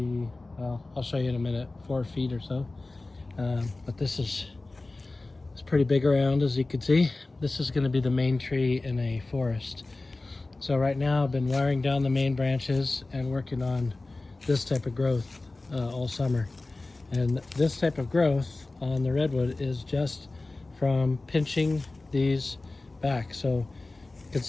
well, I'll show you in a minute, 4 feet or so. But this is it's pretty big around, as you can see. This is going to be the main tree in a forest. So right now I've been wiring down the main branches and working on this type of growth all summer. And this type of growth on the redwood is just from pinching these back. So you can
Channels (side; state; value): right; quieter; 3.2 dB